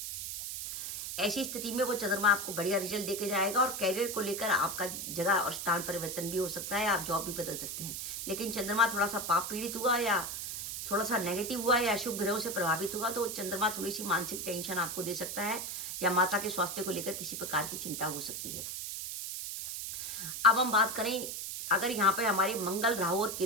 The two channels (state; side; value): noise; right; hiss, 5 dB below the sound